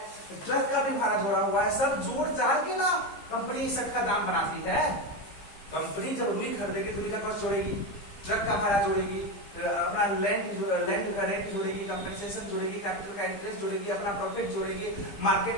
ट्रक का भी भाड़ा जोड़ा हुआ है। सब जोड़ जाड़ के ना कंपनी इस का दाम बनाती है। कंपनी जब रुई खरीदेगी तो रुई का कॉस्ट जोड़ेगी, ट्रक का भाड़ा जोड़ेगी, अपना लैंड का रेंट जोड़ेगी, कंपेंसेशन जोड़ेगी, कैपिटल का इंटरेस्ट जोड़ेगी, अपना प्रॉफिट जोड़ेगी, मार्केट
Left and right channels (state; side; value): late; right; 15 ms